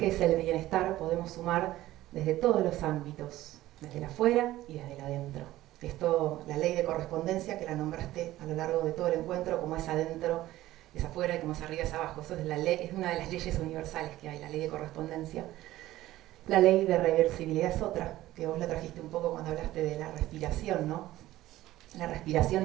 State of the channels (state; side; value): quieter; left; 15.6 dB